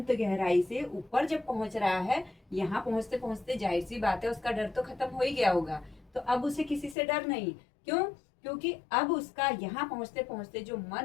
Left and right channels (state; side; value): drops out; right; at 7.0 s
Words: गहराई से ऊपर जब पहुंच रहा है, यहाँ पहुंचते पहुंचते जाहिर सी बात है उसका डर तो खत्म हो ही गया होगा। तो अब उसे किसी से डर नहीं। क्यों? क्योंकि अब उसका यहाँ पहुंचते पहुंचते जो